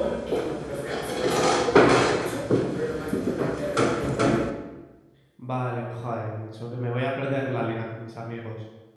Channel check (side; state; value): both; identical; correlation 1.00